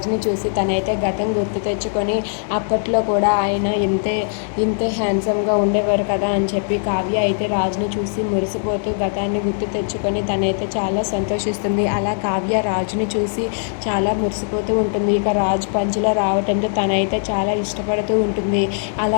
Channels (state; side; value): silent; right; digital silence